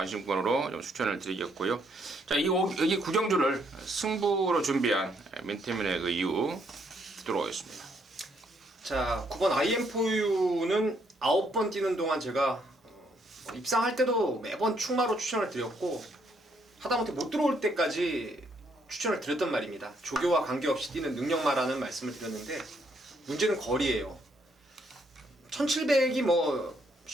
좀 추천을 드리겠고요. 자, 여기 구경주를 승부로 준비한 민태민의 그 이유 듣도록 하겠습니다. 자, 9번 IM4U는 9번 뛰는 동안 제가 입상할 때도 매번 충마로 추천을 드렸고 하다못해 못 들어올 때까지 추천을 드렸단 말입니다. 조교와 관계없이 뛰는 능력마라는 말씀을 드렸는데 문제는 거리예요. 1700이 뭐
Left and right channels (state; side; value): normal; both; correlation 0.71